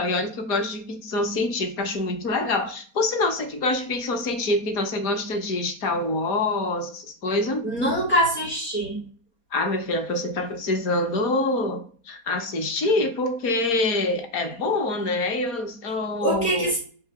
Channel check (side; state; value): right; late; 4.3 ms